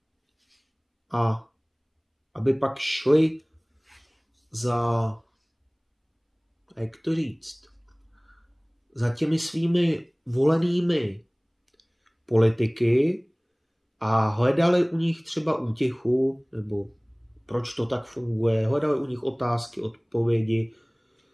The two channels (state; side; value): identical; both; correlation 1.00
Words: a aby pak šli za, jak to říct, za těmi svými volenými politiky a hledali u nich třeba útěchu, nebo proč to tak funguje, hledali u nich otázky, odpovědi.